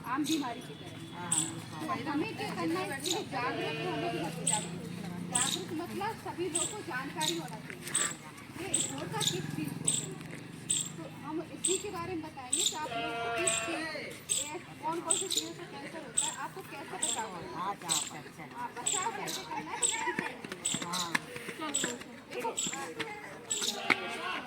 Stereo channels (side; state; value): both; identical; correlation 1.00